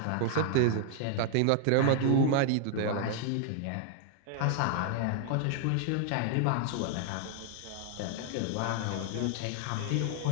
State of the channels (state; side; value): different; both; correlation 0.00